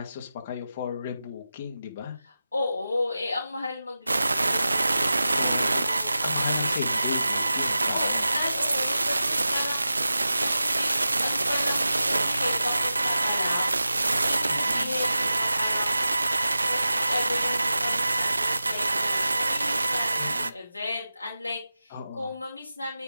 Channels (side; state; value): both; inverted; correlation -0.94